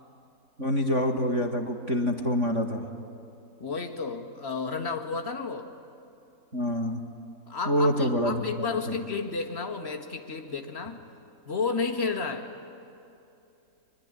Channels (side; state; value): left; late; 3.0 ms